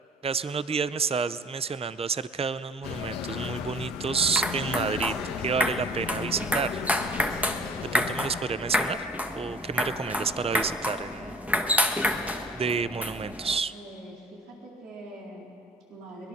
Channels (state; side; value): normal; both; correlation 0.48